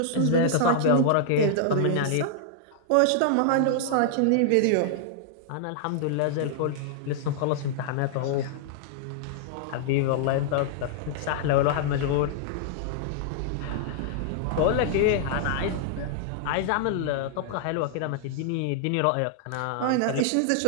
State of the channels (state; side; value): different; both; correlation -0.01